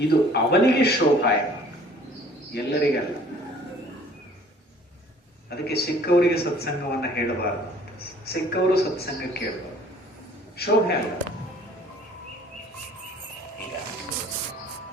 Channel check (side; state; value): both; normal; correlation 0.53